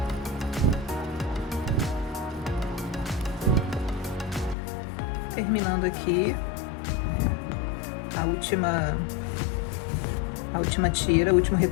Terminando aqui a última tira, o último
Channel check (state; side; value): drops out; right; at 4.5 s